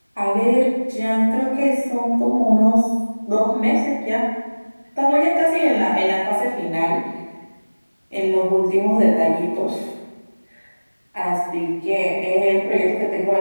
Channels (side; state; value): both; inverted; correlation -1.00